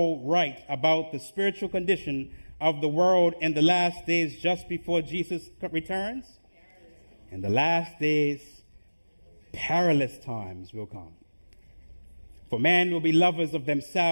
write about the spiritual condition of the world in the last days just before Jesus returns? In the last days, perilous times will come. For man will be lovers of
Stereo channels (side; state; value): both; inverted; correlation -1.00